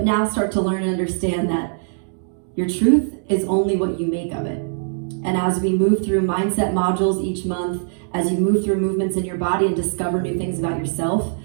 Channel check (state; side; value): silent; left; digital silence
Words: now start to learn and understand that your truth is only what you make of it. And as we move through mindset modules each month, as you move through movements in your body and discover new things about yourself,